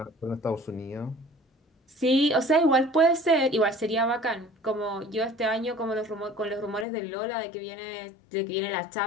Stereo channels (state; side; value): drops out; right; at 6.9 s